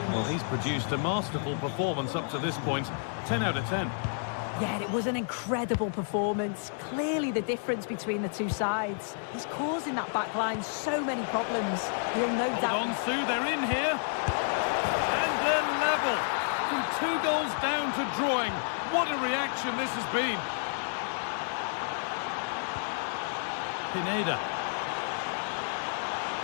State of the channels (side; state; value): right; silent; digital silence